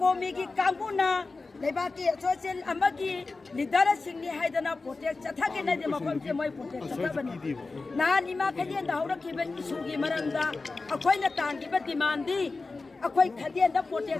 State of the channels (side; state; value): right; quieter; 3.8 dB